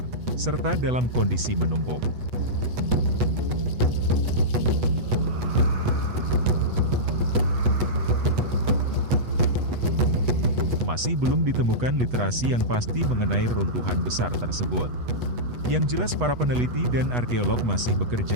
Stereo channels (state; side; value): late; left; 8.2 ms